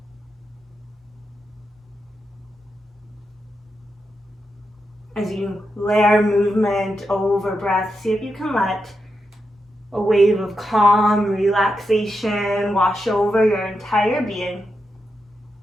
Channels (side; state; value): both; normal; correlation 0.86